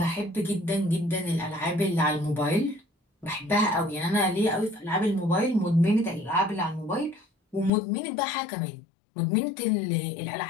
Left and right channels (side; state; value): right; drops out; at 7.7 s